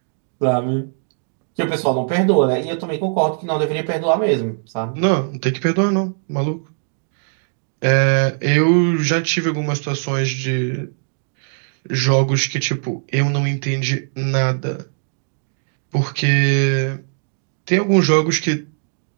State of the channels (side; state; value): left; silent; 66 dB below the other